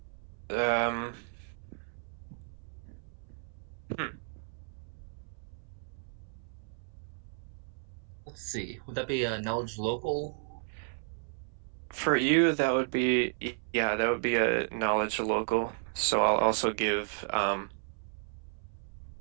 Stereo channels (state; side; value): silent; left; 56 dB below the other